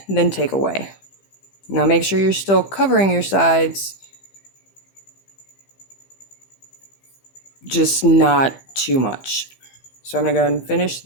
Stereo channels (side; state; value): right; late; 15 ms